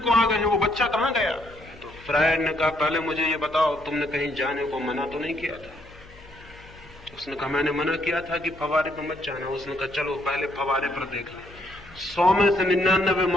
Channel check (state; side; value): noise; left; hum, 22 dB below the sound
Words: आ गए हैं, वो बच्चा कहां गया? तो फ्रायड ने कहा, पहले मुझे ये बताओ, तुमने कहीं जाने को मना तो नहीं किया था? उसने कहा, मैंने मना किया था कि फवारे पर मत जाना। उसने कहा, चलो पहले फवारे पर देख लें। 100 में से 99